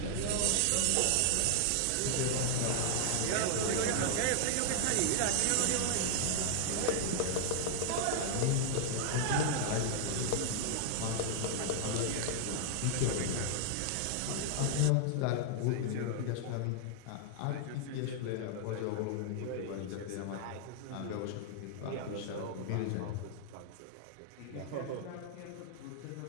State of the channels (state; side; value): different; both; correlation 0.00